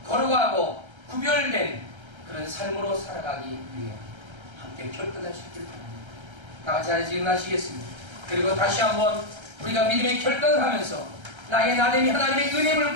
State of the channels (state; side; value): late; left; 1.3 ms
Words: 거룩하고 구별된 그런 삶으로 살아가기 위해 함께 결단하시길 바랍니다. 다 같이 하나씩 일어나시겠습니다. 그리고 다시 한번 우리가 믿음의 결단을 하면서 나의 나됨이 하나님의 은혜를